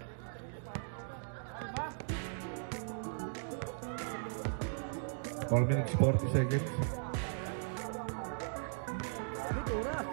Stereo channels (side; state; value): left; silent; digital silence